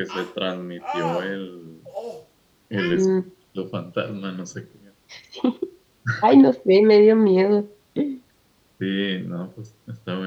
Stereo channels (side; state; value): both; identical; correlation 1.00